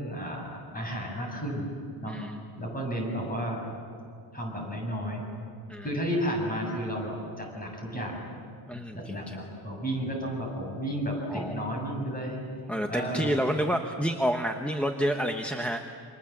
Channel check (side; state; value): both; normal; correlation 0.56